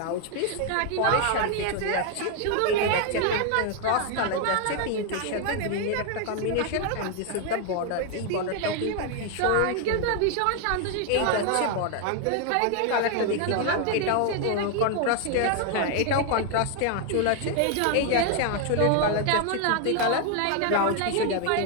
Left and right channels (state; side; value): different; both; correlation 0.00